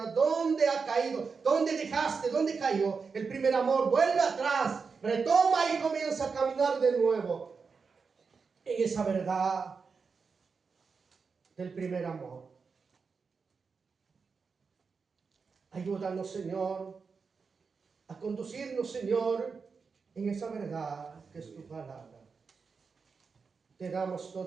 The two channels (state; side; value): quieter; left; 5.2 dB